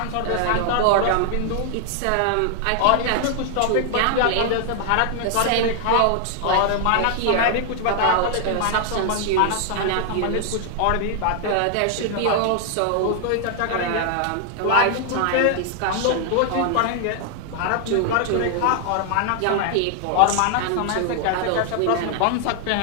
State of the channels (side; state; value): both; different; correlation 0.00